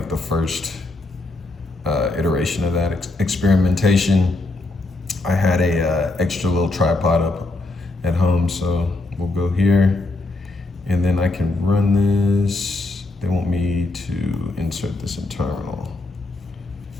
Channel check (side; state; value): right; quieter; 3.0 dB